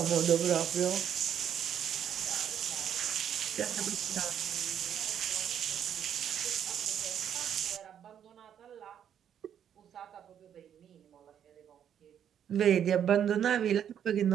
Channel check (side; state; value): left; quieter; 9.2 dB